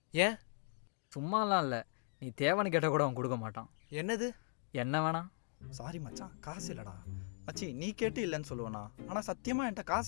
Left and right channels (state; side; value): silent; right; 52 dB below the other